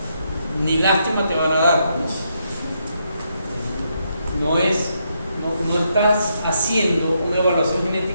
ni lástima te van a dar. No estás haciendo una evaluación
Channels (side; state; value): both; inverted; correlation -0.78